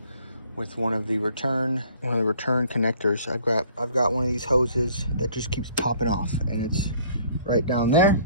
with one of the return connectors. I've got one of these hoses that just keeps popping off, and it's right down there.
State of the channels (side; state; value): both; inverted; correlation -0.56